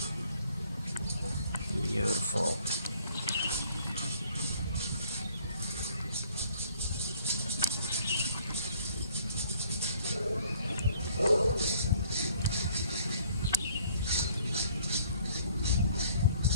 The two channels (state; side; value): inverted; both; correlation -0.59